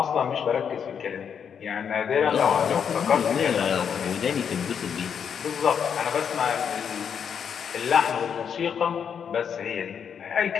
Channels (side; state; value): right; quieter; 7.5 dB